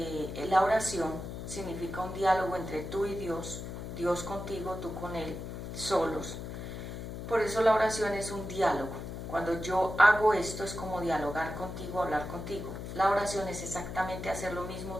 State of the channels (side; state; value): left; noise; hum, 8 dB below the sound